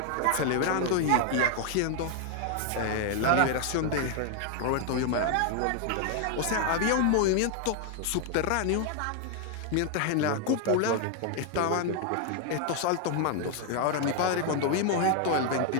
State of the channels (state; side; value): different; both; correlation 0.00